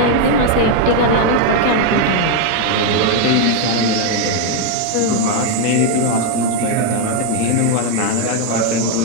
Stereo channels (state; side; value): different; both; correlation 0.01